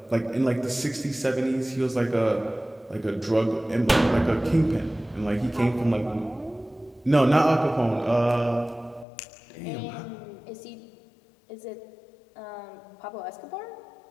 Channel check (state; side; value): drops out; right; at 9.1 s